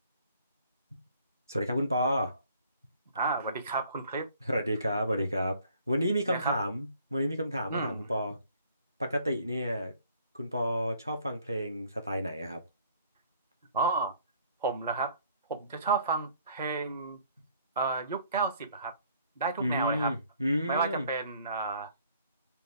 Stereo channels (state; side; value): inverted; both; correlation -0.60